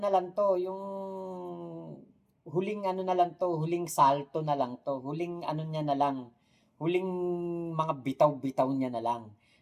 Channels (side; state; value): both; identical; correlation 1.00